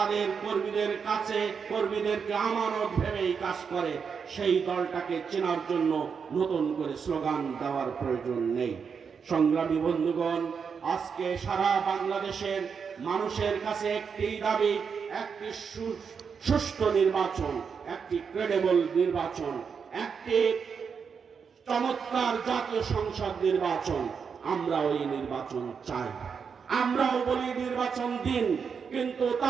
কর্মীদের কাছে কর্মীদেরকে আমানত ভেবেই কাজ করে, সেই দলটাকে চেনার জন্য নতুন করে স্লোগান দেওয়ার প্রয়োজন নেই। সংগ্রামী বন্ধুগণ, আজকে সারা বাংলাদেশের মানুষের কাছে একটি দাবি, একটি সুষ্ঠু নির্বাচন, একটি ক্রেডিবল নির্বাচন, একটি চমৎকার জাতীয় সংসদ নির্বাচন। আমরা ওই নির্বাচন চাই। আমরাও বলি নির্বাচন দিন, কিন্তু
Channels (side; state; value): left; quieter; 6.2 dB